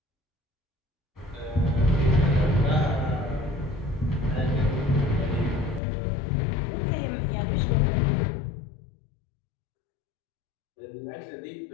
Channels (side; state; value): right; drops out; at 5.8 s